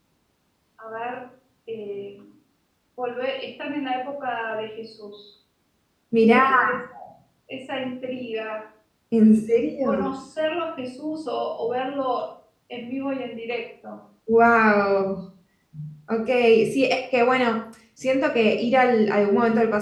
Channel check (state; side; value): identical; both; correlation 1.00